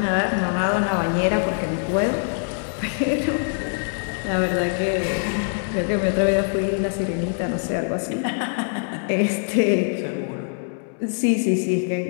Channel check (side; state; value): right; silent; 63 dB below the other